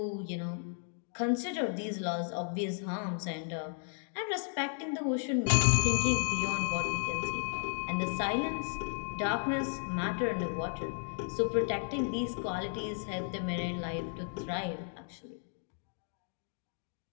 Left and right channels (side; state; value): right; silent; 55 dB below the other